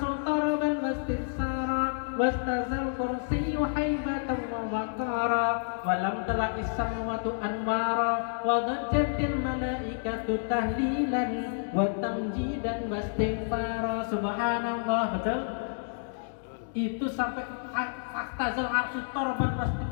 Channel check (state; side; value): silent; right; digital silence